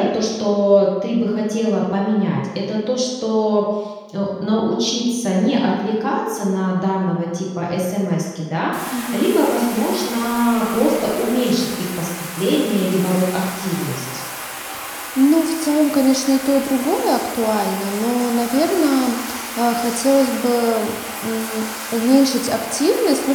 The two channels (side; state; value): both; identical; correlation 1.00